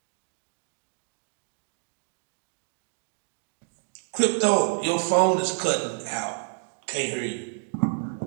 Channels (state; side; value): silent; left; digital silence